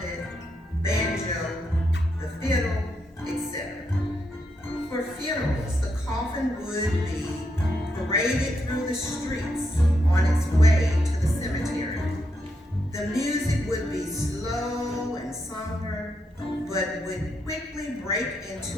banjo, the fiddle, etc. For funerals, the coffin would be paraded through the streets on its way to the cemetery. The music would be slow and somber, but but would quickly break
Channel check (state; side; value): normal; both; correlation 0.81